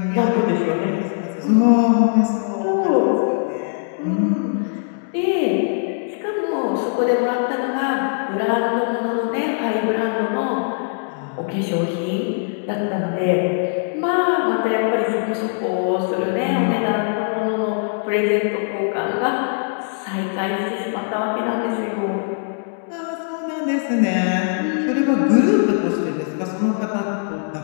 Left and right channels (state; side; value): silent; right; 65 dB below the other